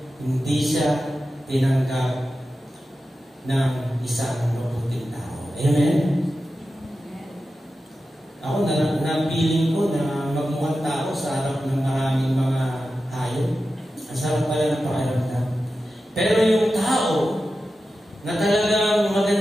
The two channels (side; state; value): both; normal; correlation 0.92